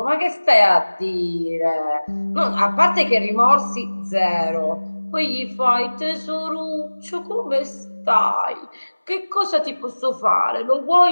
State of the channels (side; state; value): both; inverted; correlation -1.00